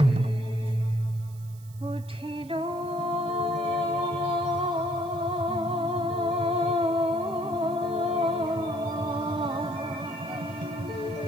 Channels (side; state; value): right; noise; hiss, 25 dB below the sound